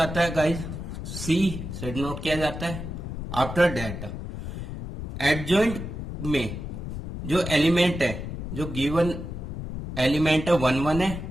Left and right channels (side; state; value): left; noise; rumble, 7 dB below the sound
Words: है गाइज सी से डिनोट किया जाता है। आफ्टर दैट एडजॉइंट में जो एलिमेंट है, जो गिवन एलिमेंट है 1 1 है,